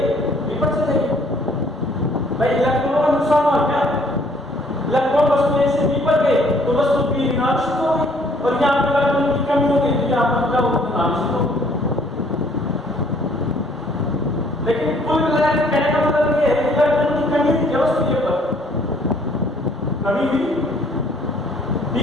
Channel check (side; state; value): both; normal; correlation 0.61